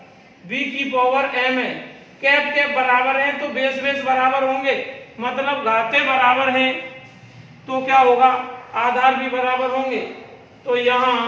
b की पावर m है, कैप कैप बराबर है तो बेस बेस बराबर होंगे, मतलब घातें बराबर हैं तो क्या होगा, आधार भी बराबर होंगे। तो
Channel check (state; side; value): identical; both; correlation 1.00